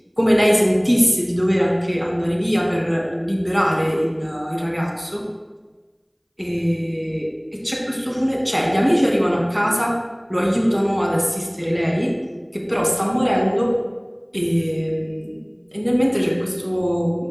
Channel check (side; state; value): both; identical; correlation 1.00